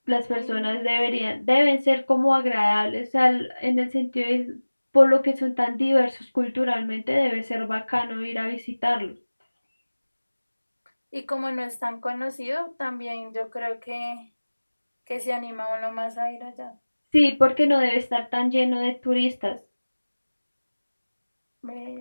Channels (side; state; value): both; inverted; correlation -1.00